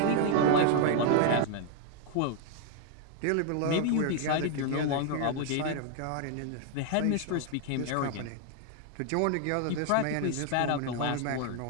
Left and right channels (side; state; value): both; different; correlation 0.00